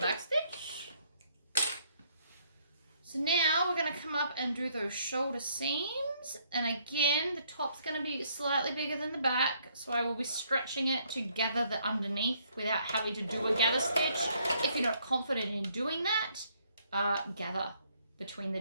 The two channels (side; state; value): both; inverted; correlation -0.68